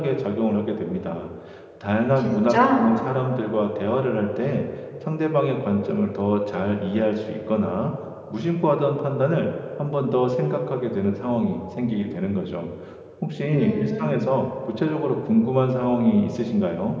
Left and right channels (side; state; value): both; identical; correlation 1.00